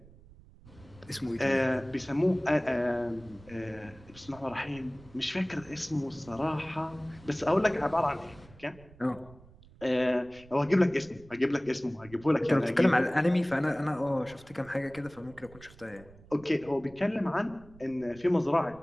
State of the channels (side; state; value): right; noise; rumble, 23 dB below the sound